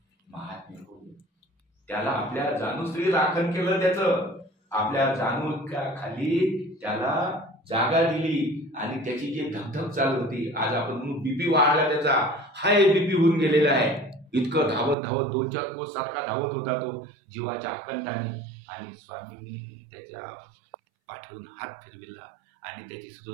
महात्म्य हो. त्याला आपल्या जाणूश्री राखण केलं, त्याचं आपल्या जाणूच्या खाली त्याला जागा दिली. आणि त्याची जी धगधग चालू होती, आज आपण म्हणून बीपी वाढला, त्याचा हाय बीपी होऊन गेलेला आहे. इतकं धावत धावत 2-4 कोस सारखा धावत होता तो जीवाच्या आकांताने. आणि स्वामींनी त्याच्या पाठवून हात फिरविला आणि त्याची सुद्धा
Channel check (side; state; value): left; drops out; at 15.0 s